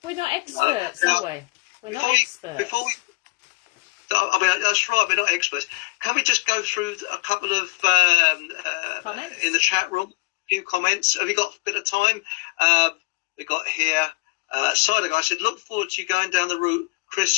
We're not experts, are we? We're not experts. That's right, we're not experts. Can we just go through a couple of comments in the chat room? A few comments. Have you got a bit of time? We got here, Cider Guy said, look forward to you going down the route,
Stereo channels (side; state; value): right; quieter; 28.0 dB